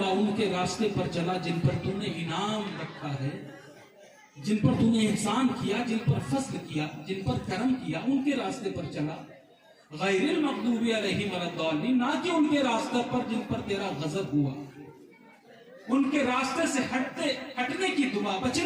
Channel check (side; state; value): both; identical; correlation 1.00